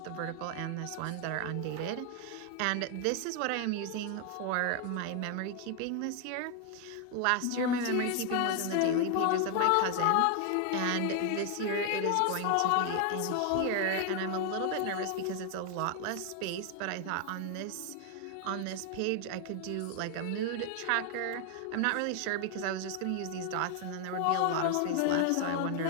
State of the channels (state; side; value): different; both; correlation 0.00